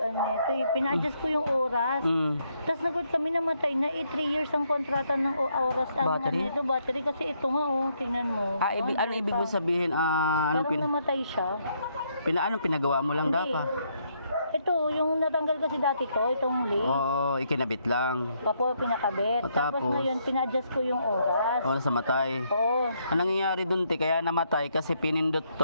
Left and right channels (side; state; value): both; inverted; correlation -0.74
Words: nito eh. Pina-adjust ko yung oras. Tapos nagod kami namatay na 3 years ang kontrata ng oras. Battery? Ito, battery kasi ito nga tingnan mo. Ano ibig mo sabihin? Parang namatay siya. Anong pinagawa mo lang Hindi. dapat? Ito, yung natanggal kasi dati to, itong link. Oo, ikinabit lang. Papo, pinakabit. Tapos ngayon, pina-adjust ko yung oras. Oo, nasa matay. Oo. Ang nangyayari dun, kaya namatay kasi pinindot